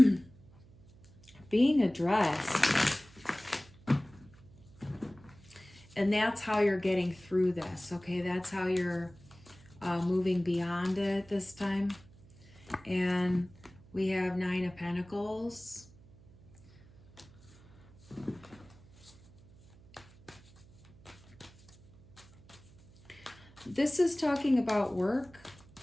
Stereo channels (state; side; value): noise; right; hum, 24 dB below the sound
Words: being addressed. And that's how you're getting through this, okay? That's how you're moving beyond it this time. And we have 9 of Pentacles. This is talking about work.